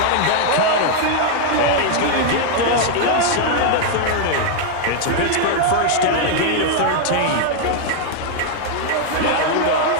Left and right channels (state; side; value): different; both; correlation 0.00